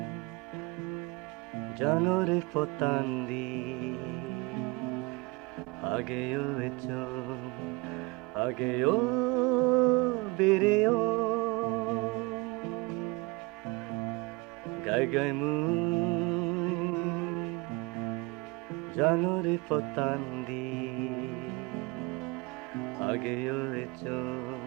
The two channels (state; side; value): quieter; left; 25.7 dB